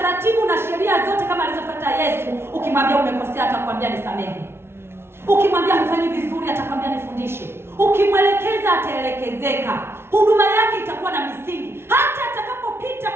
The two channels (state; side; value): late; left; 0.12 ms